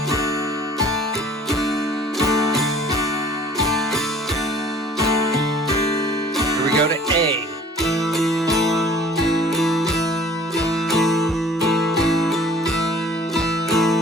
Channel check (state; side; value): normal; both; correlation 0.51